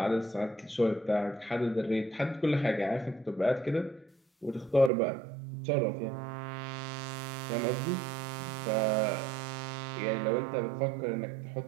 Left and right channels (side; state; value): left; drops out; at 4.9 s